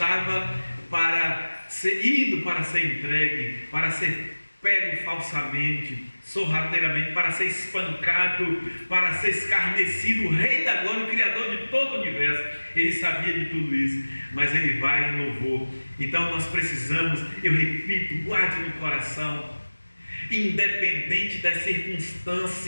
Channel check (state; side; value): inverted; both; correlation -1.00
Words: indo para ser entregue, para ser pego falsamente, sorrateiramente, para ser espancado, para ser escarnecido, o Rei da Glória, o Criador de todo o universo. Ele sabia de tudo isso, mas ele vai em louvor. Então nós precisamos, eu repito, guarde no coração, independente das